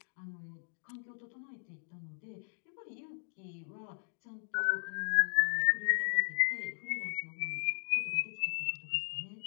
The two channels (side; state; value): right; silent; digital silence